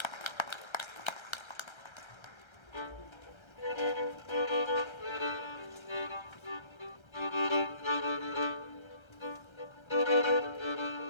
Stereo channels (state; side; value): late; right; 1.3 ms